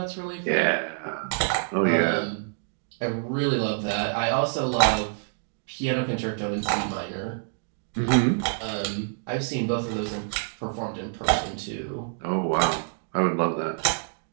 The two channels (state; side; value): silent; left; digital silence